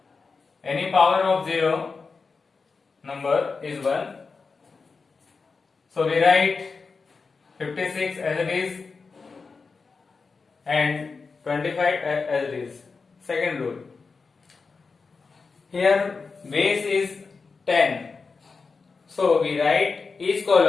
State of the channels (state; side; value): quieter; right; 4.6 dB